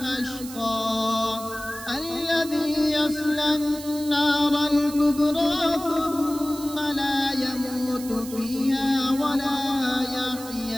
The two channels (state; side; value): noise; right; hiss, 14 dB below the sound